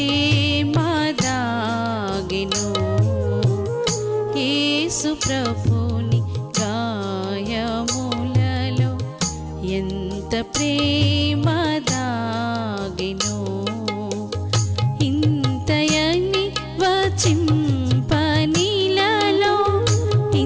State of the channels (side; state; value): both; identical; correlation 1.00